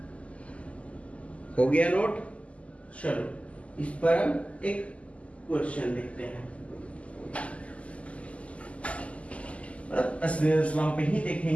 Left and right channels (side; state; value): right; late; 0.064 ms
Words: हो गया नोट? चलो, इस पर हम एक क्वेश्चन देखते हैं। स्नेल्स लॉ पे ही